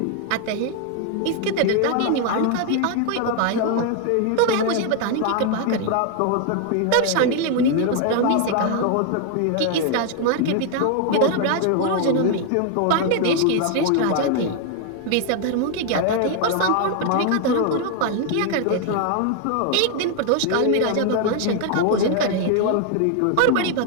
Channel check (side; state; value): both; different; correlation 0.00